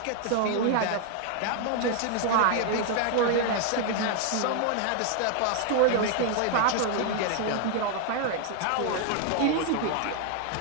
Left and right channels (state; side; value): different; both; correlation 0.00